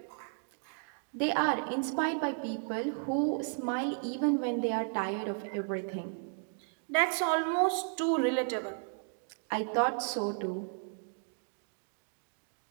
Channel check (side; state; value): left; silent; 55 dB below the other